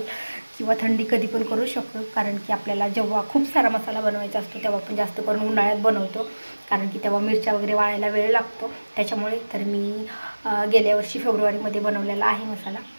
किंवा थंडी कधी पण करू शकतो, कारण की आपल्याला जेव्हा खूप सारा मसाला बनवायचा असतो तेव्हा आपण जास्त करून उन्हाळ्यात बनवतो, कारण की तेव्हा मिरच्या वगैरे वाळायला वेळ लागतो त्याच्यामुळे. तर मी गेल्या वर्षी फेब्रुवारीमध्ये बनवलेला आहे मसाला,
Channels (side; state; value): both; inverted; correlation -1.00